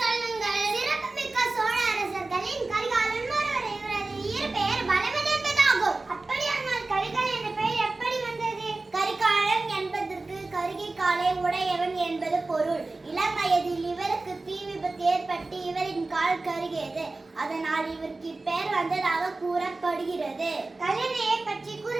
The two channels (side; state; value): left; quieter; 3.3 dB